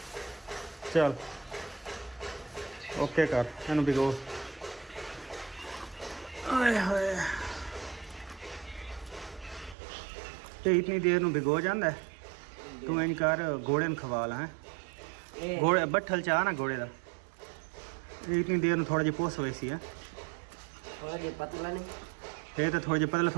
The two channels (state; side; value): drops out; left; at 9.8 s